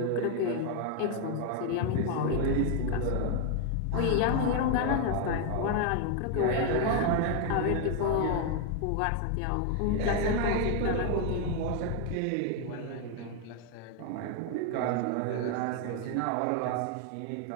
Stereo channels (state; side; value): different; both; correlation 0.00